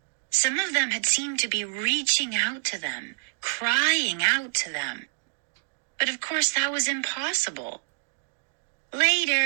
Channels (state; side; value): silent; left; digital silence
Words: Some of them had seemed to be reaching out to them, crying out to them. But of course that was impossible.